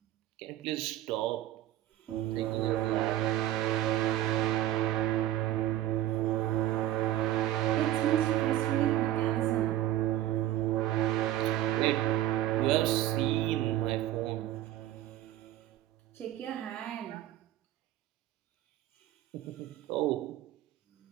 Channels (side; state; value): left; quieter; 13.7 dB